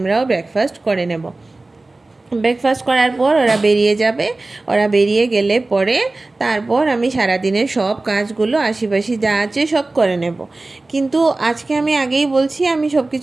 ব্রেকফাস্ট করে নেব। ব্রেকফাস্ট করার পর ওরা বেরিয়ে যাবে। ওরা বেরিয়ে গেলে পরে তারপর আমি সারাদিনের সব কাজগুলো আশিপাশি যা আছে সব করে নেব। কিন্তু আজকে আমি আগেই বলছি, আমি সব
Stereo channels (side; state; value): left; quieter; 3.1 dB